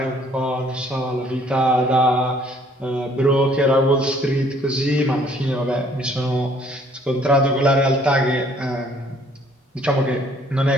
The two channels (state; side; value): normal; both; correlation 0.60